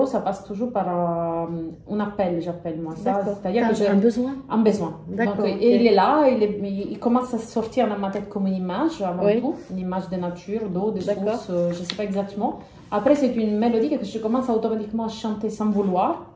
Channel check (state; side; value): identical; both; correlation 1.00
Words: ça passe toujours par un appel, j'appelle moi ça. C'est-à-dire que j'ai un besoin. Un besoin. Donc, et il est là, il commence à sortir dans ma tête comme une image, avant tout. Une image de nature, d'eau, de source, je ne sais pas exactement. Après, c'est une mélodie que je commence automatiquement à chanter sans vouloir.